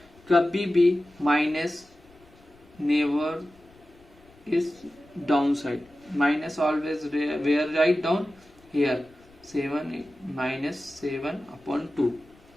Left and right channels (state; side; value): noise; left; rumble, 28 dB below the sound